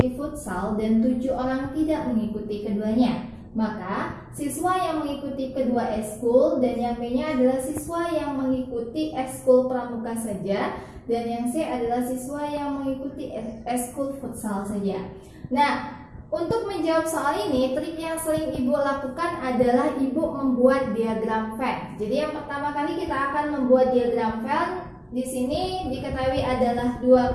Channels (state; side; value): identical; both; correlation 1.00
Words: futsal, dan 7 orang tidak mengikuti keduanya. Maka siswa yang mengikuti kedua ekskul dan yang B-nya adalah siswa yang mengikuti ekskul pramuka saja, dan yang C adalah siswa yang mengikuti ekskul futsal saja. Nah, untuk menjawab soal ini, trik yang sering Ibu lakukan adalah Ibu membuat diagram Venn. Jadi yang pertama kali kita akan membuat diagram Venn. Di sini diketahui adalah